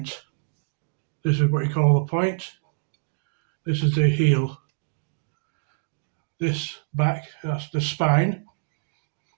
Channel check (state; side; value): silent; left; digital silence